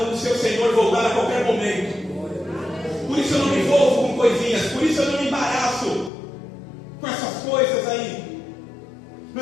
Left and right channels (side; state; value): right; drops out; at 6.1 s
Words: o seu Senhor voltar a qualquer momento. Por isso eu não me envolvo com coisinhas, por isso eu não me embaraço com essas coisas aí.